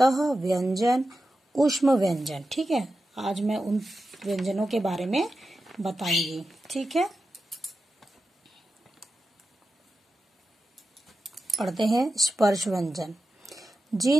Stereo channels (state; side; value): normal; both; correlation 0.92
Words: व्यंजन, ऊष्म व्यंजन। ठीक है, आज मैं उन व्यंजनों के बारे में बताऊंगी। ठीक है, पढ़ते हैं। स्पर्श व्यंजन।